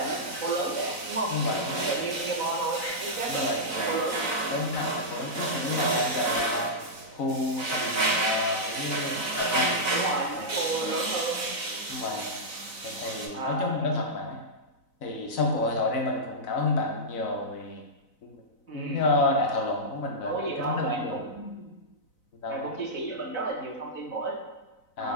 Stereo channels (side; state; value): right; late; 4.0 ms